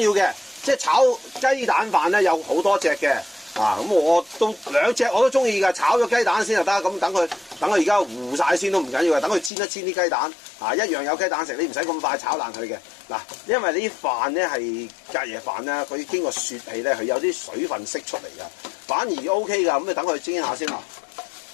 要嘅，即係炒雞蛋飯咧有好多隻嘅，咁我都兩隻我都中意㗎，炒咗雞蛋先就得，咁等佢而家糊晒先都唔緊要嘅，等佢煎一煎啲雞蛋，一樣有雞蛋食，你唔使咁快炒爛佢嘅，嗱，因為呢啲飯咧係隔夜飯咧，佢經過雪氣咧，佢有啲水分釋出嚟㗎，反而 OK 㗎，咁你等佢煎下先啦，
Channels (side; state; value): right; drops out; at 9.5 s